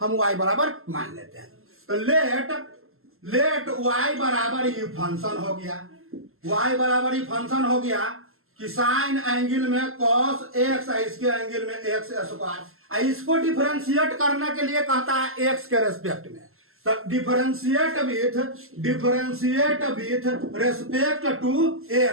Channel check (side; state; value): left; late; 0.62 ms